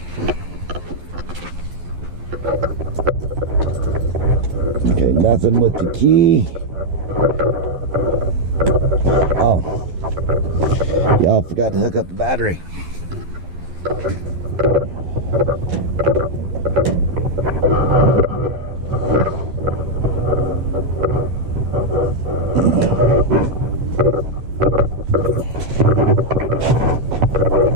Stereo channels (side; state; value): left; late; 11 ms